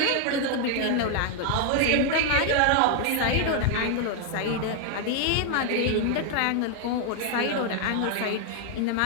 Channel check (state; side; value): different; both; correlation 0.00